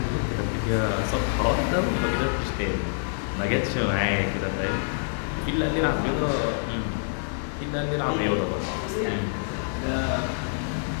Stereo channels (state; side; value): silent; right; 61 dB below the other